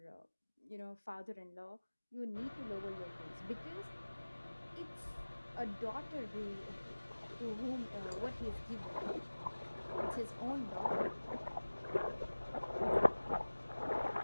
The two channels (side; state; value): both; inverted; correlation -1.00